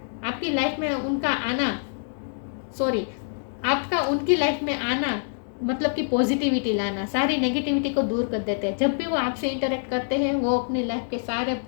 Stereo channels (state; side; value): silent; right; digital silence